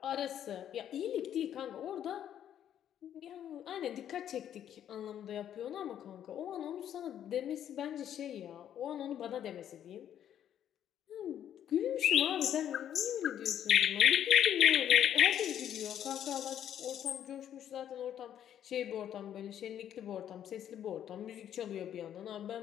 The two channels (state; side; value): quieter; right; 10.2 dB